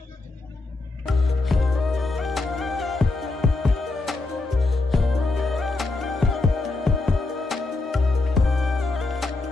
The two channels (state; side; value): quieter; right; 3.3 dB